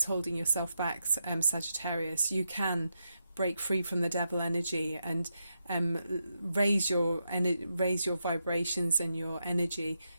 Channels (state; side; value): inverted; both; correlation -0.84